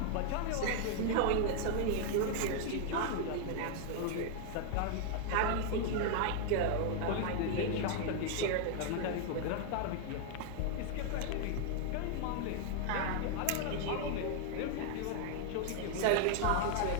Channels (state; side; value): different; both; correlation 0.00